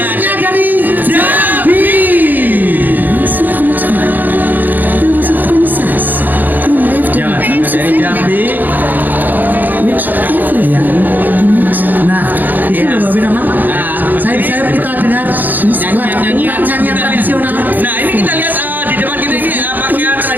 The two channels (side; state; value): left; late; 0.086 ms